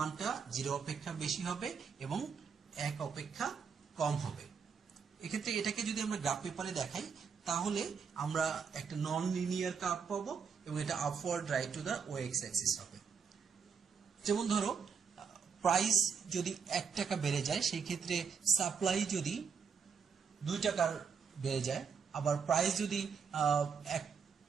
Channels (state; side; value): quieter; left; 6.2 dB